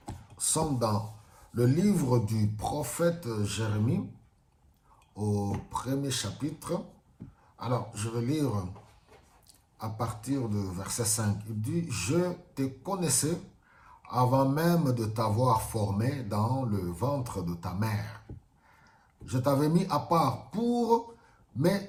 sommes dans le livre du prophète Jérémie au premier chapitre. Alors, je vais lire à partir du verset 5. Il dit, « Je te connaissais avant même de t'avoir formé dans le ventre de ta mère. Je t'avais mis à part pour me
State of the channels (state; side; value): identical; both; correlation 1.00